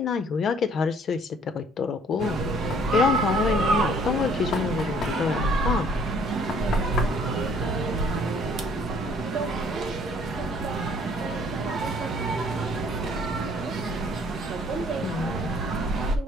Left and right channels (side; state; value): both; normal; correlation 0.59